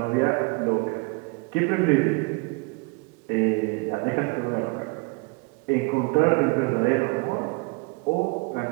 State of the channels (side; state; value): left; quieter; 29.2 dB